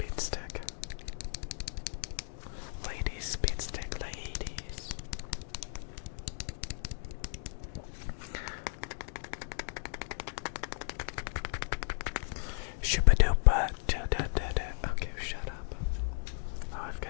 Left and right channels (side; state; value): right; silent; 54 dB below the other